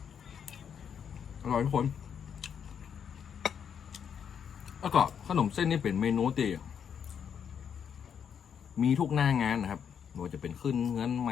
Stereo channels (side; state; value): right; quieter; 7.7 dB